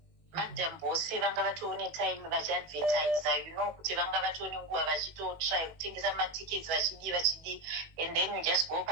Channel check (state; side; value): late; left; 18 ms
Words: Madam boss vanga vatone time vachiadvertise, you know, kuti vanga vatone nguva vachitotry kutengesa matickets vachidi, and then you just go